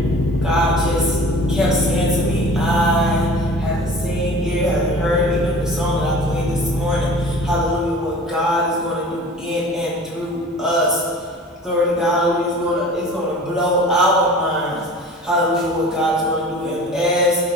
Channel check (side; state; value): both; normal; correlation 0.42